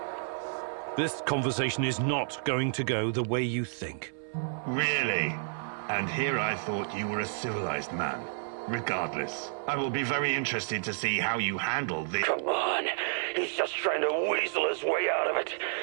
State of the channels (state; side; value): silent; left; 57 dB below the other